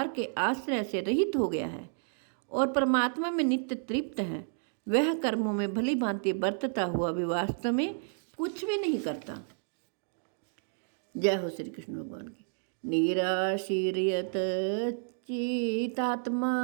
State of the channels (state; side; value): silent; left; digital silence